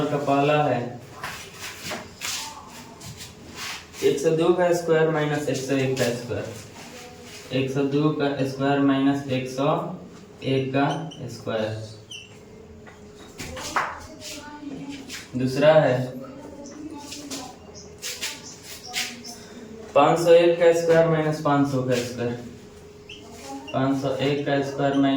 का पहला है 102 का स्क्वायर माइनस 101 का स्क्वायर। 102 का स्क्वायर माइनस 101 का स्क्वायर। दूसरा है 501 का स्क्वायर माइनस 500 का स्क्वायर। 501 का स्क्वायर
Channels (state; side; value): identical; both; correlation 1.00